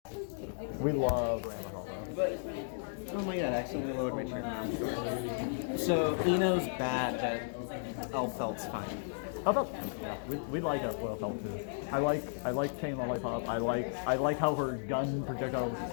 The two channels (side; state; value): right; silent; digital silence